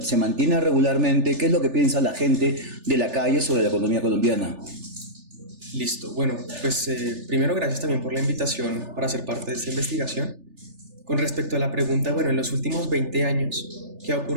se mantiene regularmente, qué es lo que piensa la gente de la calle sobre la economía colombiana. Listo. Bueno, pues primero gracias también por la invitación para ser parte de esta investigación. Con respecto a la pregunta, bueno, en los últimos 20 años, ¿qué ha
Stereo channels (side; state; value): left; late; 3.4 ms